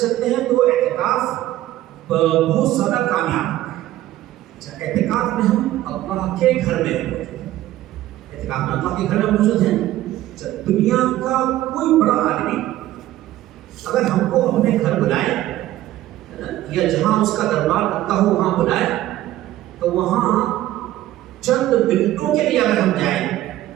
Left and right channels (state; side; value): quieter; left; 14.6 dB